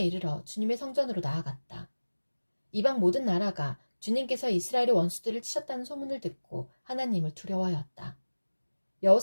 주님의 성전으로 나아갔다. 이방 모든 나라가 주님께서 이스라엘의 원수들을 치셨다는 소문을 듣고 하나님을 두려워하였다.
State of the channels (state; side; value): inverted; both; correlation -1.00